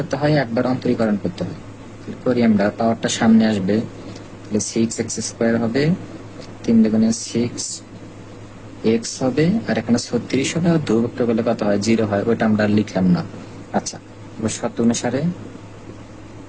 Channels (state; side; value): identical; both; correlation 1.00